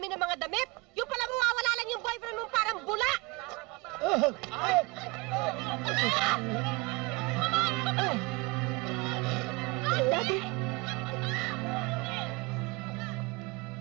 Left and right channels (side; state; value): left; quieter; 25.1 dB